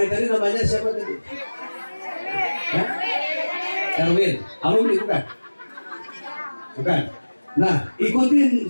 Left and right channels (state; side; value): inverted; both; correlation -1.00